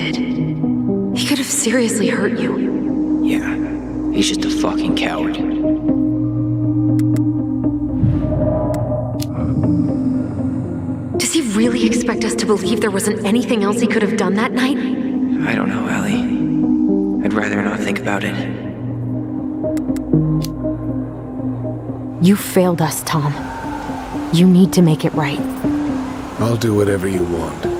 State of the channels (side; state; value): both; identical; correlation 1.00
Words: He could have seriously hurt you. Yeah, he's just a fucking coward. Does he really expect us to believe there wasn't anything else he could have done that night? I don't know, Ellie. I'd rather not think about it. You failed us, Tom. You need to make it right. I'll do whatever you want.